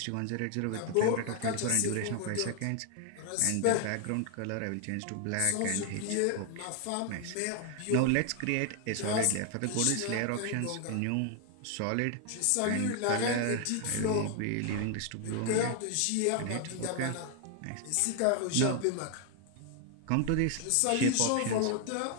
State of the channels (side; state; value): both; different; correlation 0.00